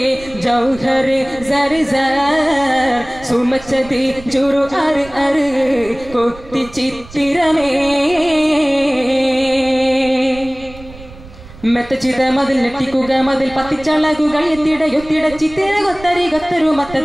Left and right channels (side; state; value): right; noise; rumble, 18 dB below the sound